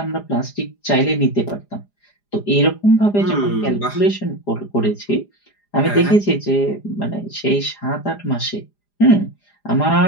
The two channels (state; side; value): late; right; 4.9 ms